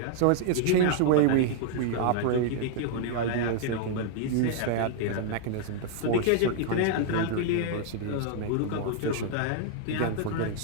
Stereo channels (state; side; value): different; both; correlation -0.01